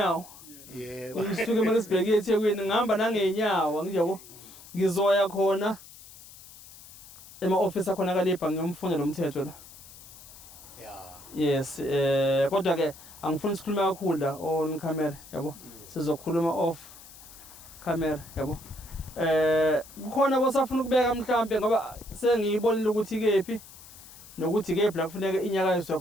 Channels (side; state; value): left; noise; hiss, 19 dB below the sound